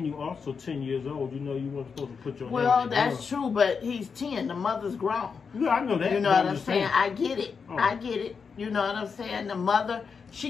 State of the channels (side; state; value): right; quieter; 5.7 dB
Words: you also 10 years old. You weren't supposed to put your hand Well, in that's true, but he's 10. The mother's grown. Yeah, I know that. You know what I'm saying? I get it. Oh. I get it. You know what I'm saying? The mother,